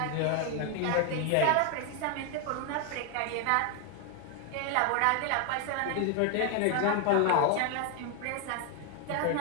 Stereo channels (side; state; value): both; different; correlation 0.01